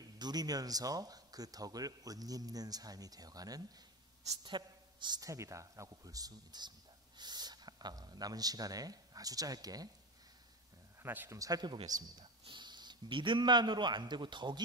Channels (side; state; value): both; normal; correlation 0.20